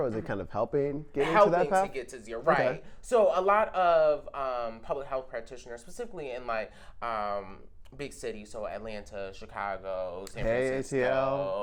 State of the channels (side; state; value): both; identical; correlation 1.00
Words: is it kind of helping to that path? To get to zero, right? Okay. So a lot of public health practitioners, specifically in like big cities, so Atlanta, Chicago, San